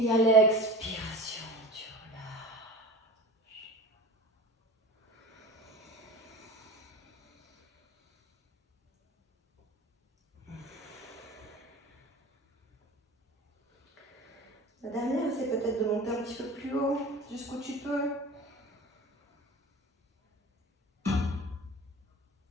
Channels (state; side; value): normal; both; correlation 0.35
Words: à l'expiration, tu relâches. La dernière, c'est peut-être de monter un petit peu plus haut, jusqu'où tu peux.